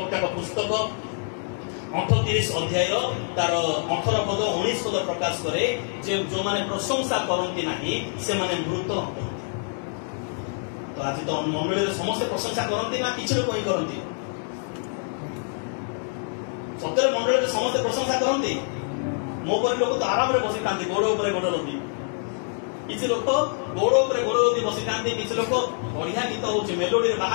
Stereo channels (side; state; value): right; silent; 61 dB below the other